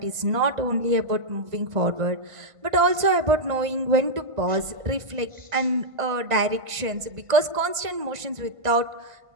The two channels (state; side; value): late; left; 1.5 ms